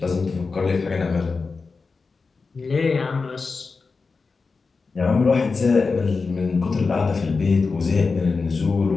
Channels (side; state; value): right; quieter; 4.4 dB